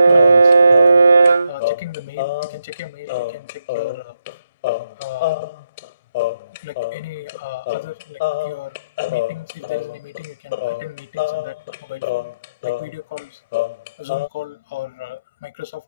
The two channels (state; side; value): inverted; both; correlation -0.80